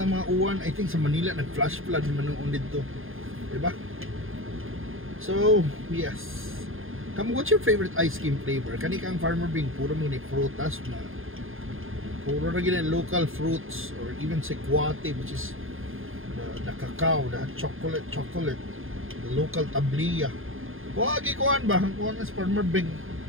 ng mga uwan. I think sa Manila, nag-flash flood naman noon dito. Diba? So, yes. What's your favorite ice cream flavor? Kani kang Farmer Bing, puro mo ni frutas na. Puro na gina local fruits or even sequate, which is the cacao, the chocolate, the local tabliya. Wagi kuan ba? Ang kuan is Farmer Bing.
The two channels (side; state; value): left; late; 0.59 ms